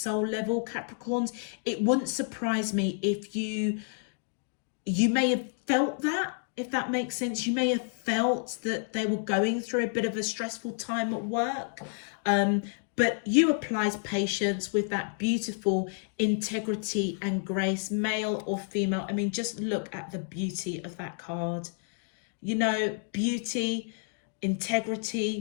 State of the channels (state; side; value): silent; right; 58 dB below the other